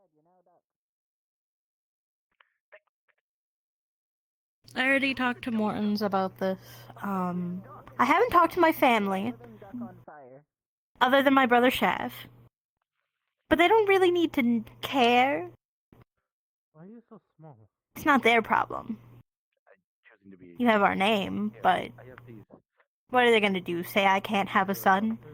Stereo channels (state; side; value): identical; both; correlation 1.00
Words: I already talked to Mortons about this. I haven't talked to my family, other than my brother Shav. But they don't really need to care. Why are you so small? It's not their problem. You have our name, but what are they gonna do? Say I can't have a son?